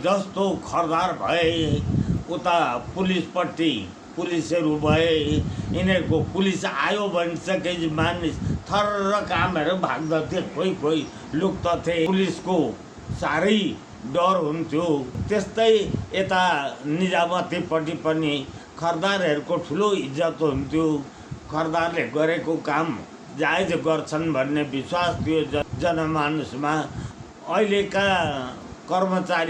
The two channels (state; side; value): identical; both; correlation 1.00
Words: जस्तो खरदार भए उता पुलिसपट्टि पुलिसहरू भए, यिनीहरूको पुलिस आयो भनिसकेपछि मानिस थर्र कामहरू भाग्दथे, कोही लुक्दथे। पुलिसको साह्रै डर हुन्थ्यो। त्यस्तै यता निजामतीपट्टि पनि खरदारहरूको ठुलो इज्जत हुन्थ्यो। खरदारले गरेको काम जायज गर्छन् भन्ने विश्वास थियो जनमानसमा। अहिलेका